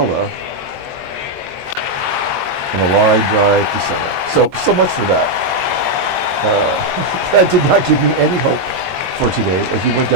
And a line drive to center. So much for that. That did not give me any hope for today as we went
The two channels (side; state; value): left; late; 22 ms